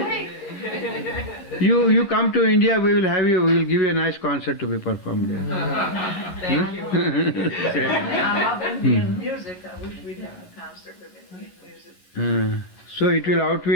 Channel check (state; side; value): late; right; 11 ms